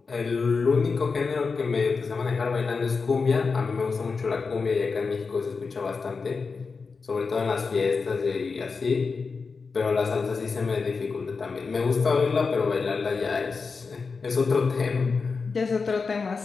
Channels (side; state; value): right; quieter; 4.7 dB